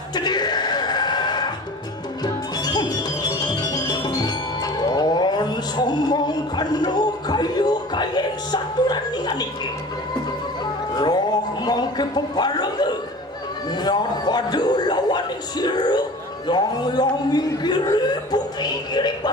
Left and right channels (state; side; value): normal; both; correlation 0.40